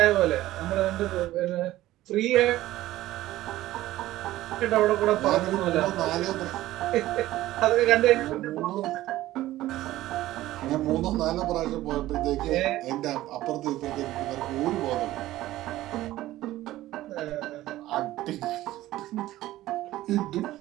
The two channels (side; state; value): left; quieter; 15.6 dB